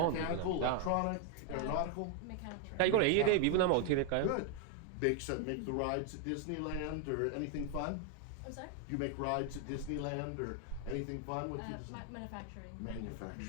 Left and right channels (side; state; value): both; different; correlation 0.00